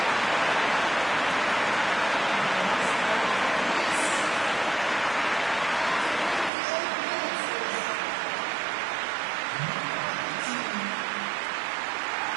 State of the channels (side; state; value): left; drops out; at 6.5 s